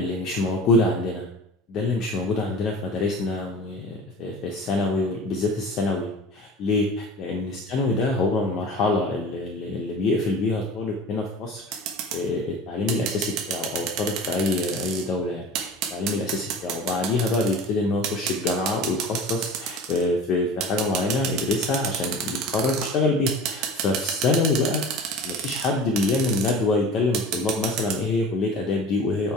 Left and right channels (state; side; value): normal; both; correlation 0.37